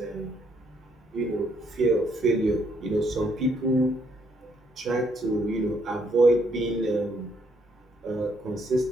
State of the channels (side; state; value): both; normal; correlation 0.71